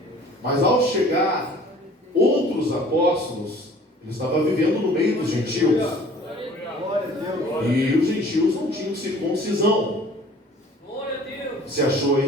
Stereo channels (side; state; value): both; normal; correlation 0.50